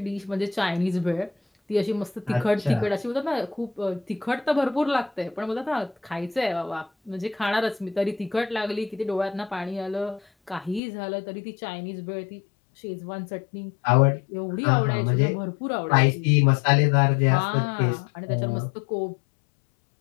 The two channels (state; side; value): drops out; right; at 10.8 s